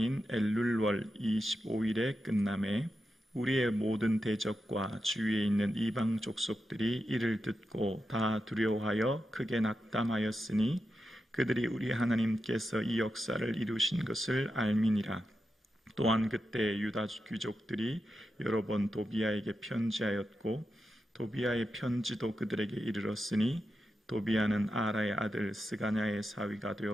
엘룰월 25일에 끝남에 우리의 모든 대적과 주위에 있는 이방 족속들이 이를 듣고 다 두려워하여 크게 낙담하였으니 그들이 우리 하나님께서 이 역사를 이루신 것을 알미니라. 또한 그때 유다 귀족들이 여러 번 도비아에게 편지하였고 도비아의 편지도 그들에게 이르렀으니 도비아는 아라의 아들 스가냐의 사위가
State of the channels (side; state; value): both; normal; correlation 0.89